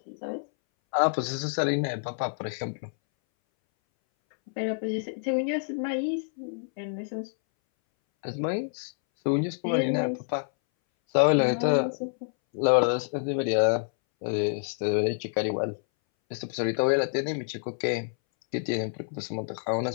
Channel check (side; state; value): right; silent; 60 dB below the other